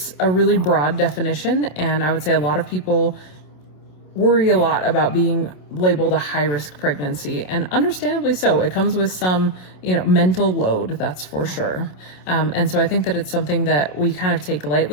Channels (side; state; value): right; late; 27 ms